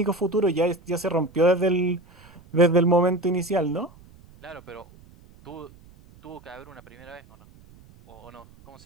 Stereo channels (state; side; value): noise; right; rumble, 24 dB below the sound